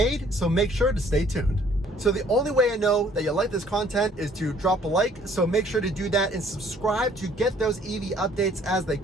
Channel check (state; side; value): normal; both; correlation 0.59